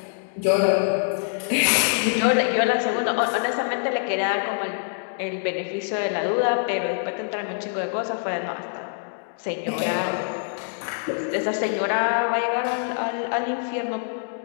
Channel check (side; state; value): right; silent; digital silence